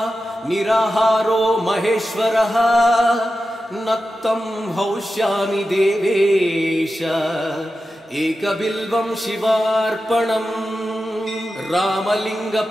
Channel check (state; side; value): normal; both; correlation 0.92